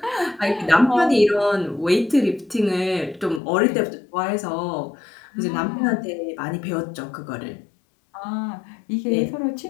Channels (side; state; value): right; drops out; at 3.4 s